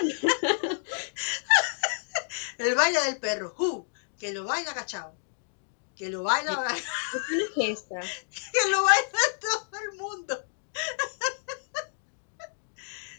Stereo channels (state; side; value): silent; right; digital silence